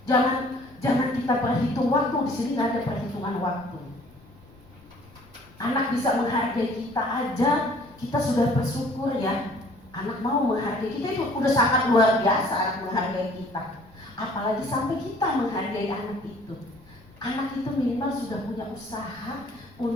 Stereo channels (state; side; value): noise; left; rumble, 26 dB below the sound